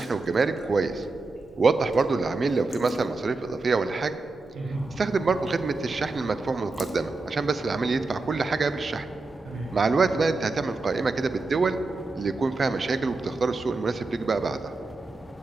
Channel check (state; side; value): quieter; left; 3.5 dB